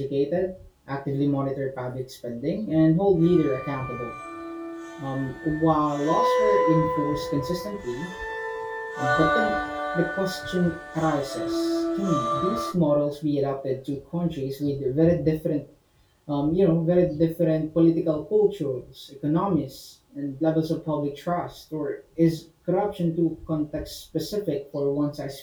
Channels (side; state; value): both; identical; correlation 1.00